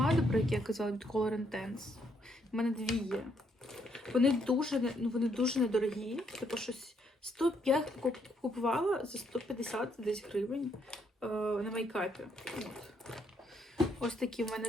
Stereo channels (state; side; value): normal; both; correlation 0.73